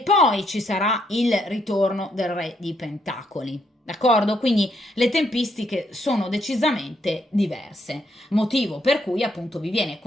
ci sarà il ritorno del re di pentacoli. D'accordo? Quindi le tempistiche sono decisamente diverse, motivo per cui appunto vi viene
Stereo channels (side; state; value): both; normal; correlation 0.75